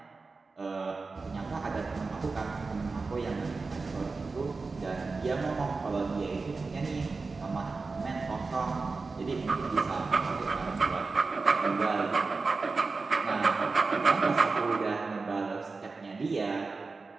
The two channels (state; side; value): quieter; left; 4.1 dB